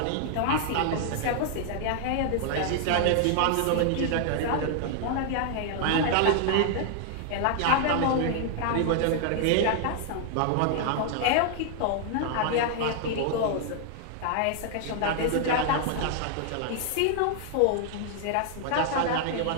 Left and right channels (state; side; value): different; both; correlation 0.00